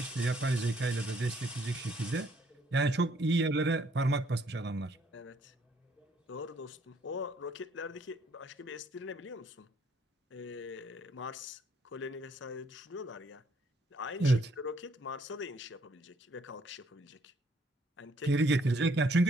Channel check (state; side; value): normal; both; correlation 0.66